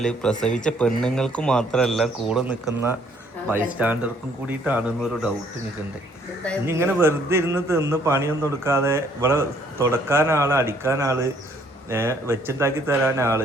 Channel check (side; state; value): both; normal; correlation 0.64